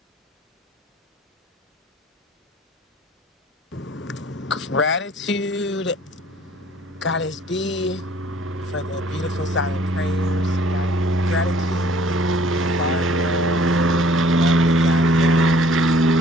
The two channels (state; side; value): normal; both; correlation 0.55